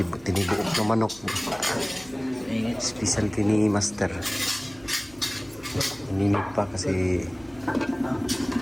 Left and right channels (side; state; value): right; noise; rumble, 26 dB below the sound